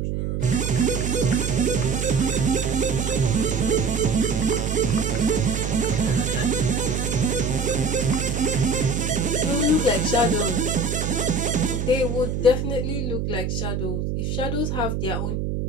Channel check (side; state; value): right; noise; hum, 1 dB below the sound